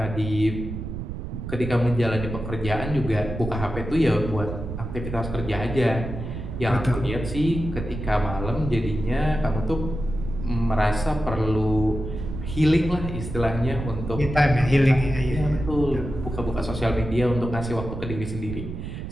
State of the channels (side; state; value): right; noise; rumble, 7 dB below the sound